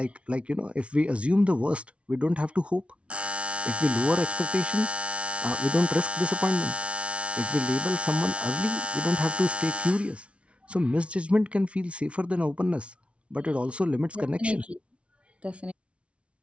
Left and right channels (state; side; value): late; left; 0.061 ms